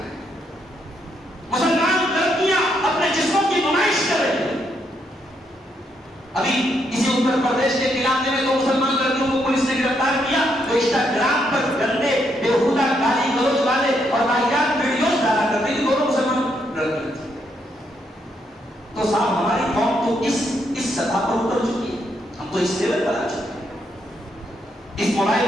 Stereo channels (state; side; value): normal; both; correlation 0.77